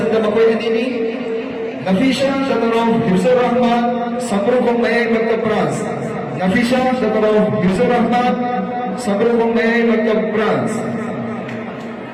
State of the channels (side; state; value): both; identical; correlation 1.00